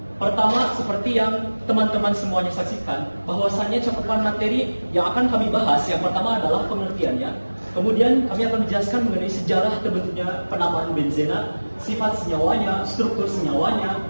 Pertama, seperti yang teman-teman semuanya saksikan, bahwasannya cakupan materi yang akan kami bahas yang pertama adalah pengertiannya. Kemudian kami akan menjelaskan mengenai sejarah terbentuknya penamaan benzena, sifat senyawanya, struktur senyawanya,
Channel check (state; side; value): inverted; both; correlation -1.00